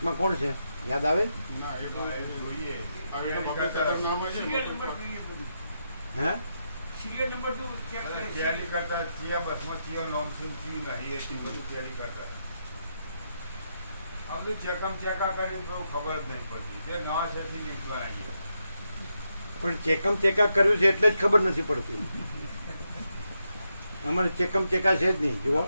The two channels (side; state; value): both; inverted; correlation -0.83